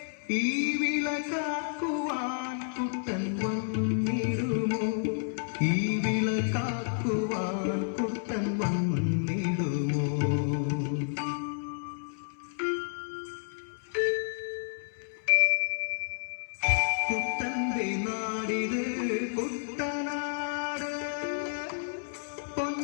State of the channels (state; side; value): silent; right; 57 dB below the other